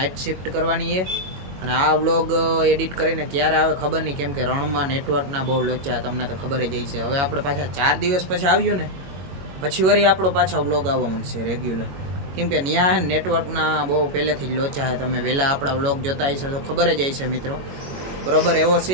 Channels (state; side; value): late; left; 22 ms